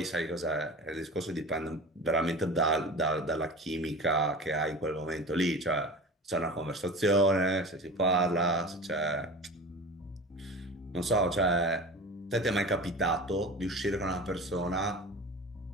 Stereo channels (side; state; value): both; normal; correlation 0.35